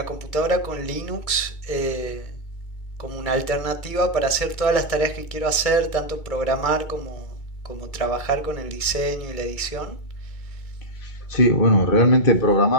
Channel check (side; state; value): right; late; 2.3 ms